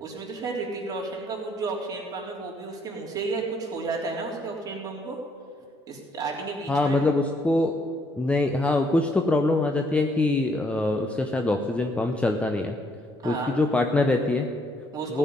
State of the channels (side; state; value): both; normal; correlation 0.69